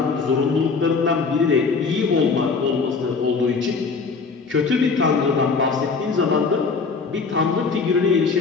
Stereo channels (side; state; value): right; quieter; 4.7 dB